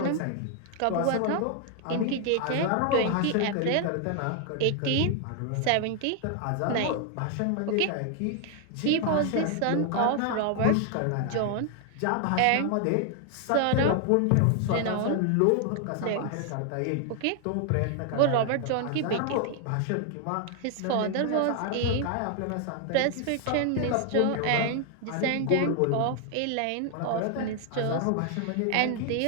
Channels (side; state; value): both; different; correlation 0.00